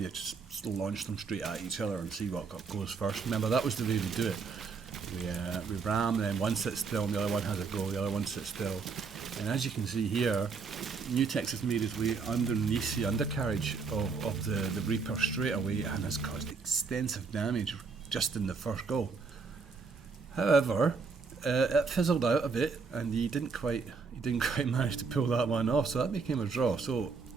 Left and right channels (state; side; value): quieter; left; 4.9 dB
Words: just launch them straight at each other and see what goes first. Remember, that was the way we do it. We ram, then one sits still and the other one has a go, the other one sits still. And as you can see here, Neutex has made his way underneath the undercarriage of the Reaper straight away and has caused extensive damage just in the first go. However, it fizzled out a bit and he didn't quite manage to pull that one off, so that became a draw. So